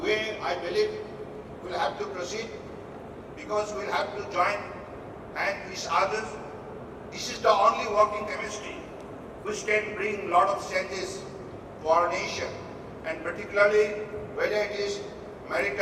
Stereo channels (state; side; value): identical; both; correlation 1.00